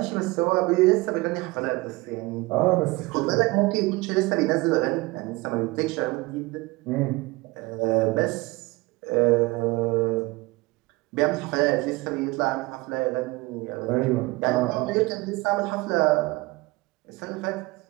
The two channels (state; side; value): quieter; left; 22.5 dB